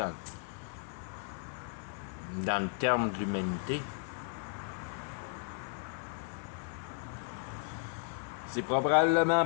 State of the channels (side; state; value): right; silent; 54 dB below the other